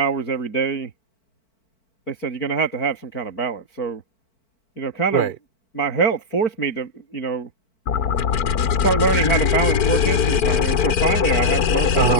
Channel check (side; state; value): right; late; 4.5 ms